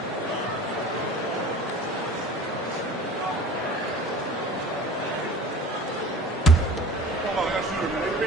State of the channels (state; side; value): normal; both; correlation 0.41